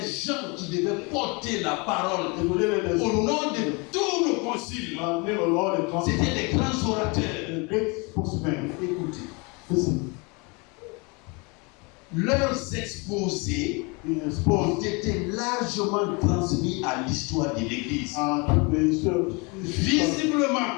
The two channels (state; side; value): quieter; right; 29.5 dB